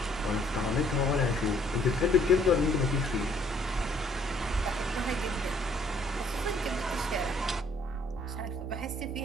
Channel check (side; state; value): both; normal; correlation 0.63